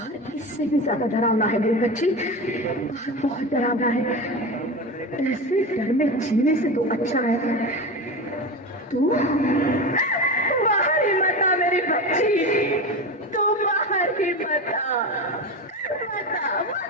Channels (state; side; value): normal; both; correlation 0.24